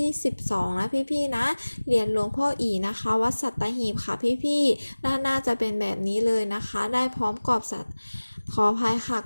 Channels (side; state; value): both; inverted; correlation -1.00